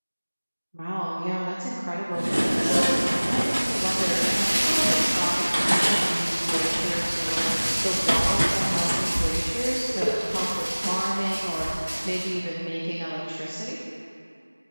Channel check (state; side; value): inverted; both; correlation -1.00